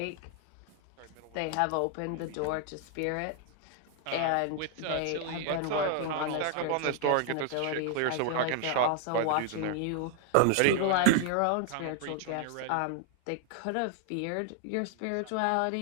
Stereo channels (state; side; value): different; both; correlation 0.00